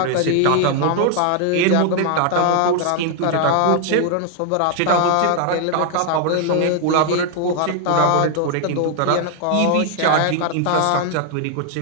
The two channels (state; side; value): different; both; correlation 0.00